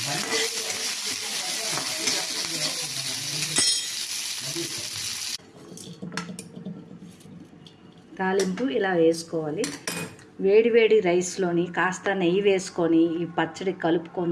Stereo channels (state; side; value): identical; both; correlation 1.00